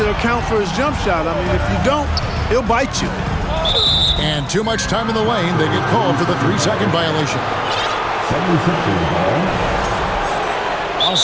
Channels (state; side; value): identical; both; correlation 1.00